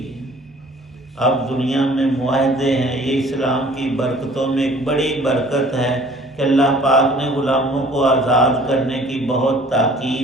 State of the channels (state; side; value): normal; both; correlation 0.52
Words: ہے۔ اب دنیا میں معاہدے ہیں، یہ اسلام کی برکتوں میں ایک بڑی برکت ہے کہ اللہ پاک نے غلاموں کو آزاد کرنے کی بہت